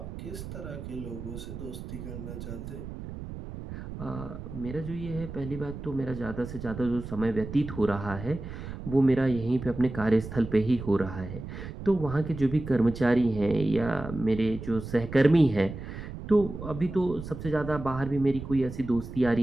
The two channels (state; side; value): noise; right; rumble, 10 dB below the sound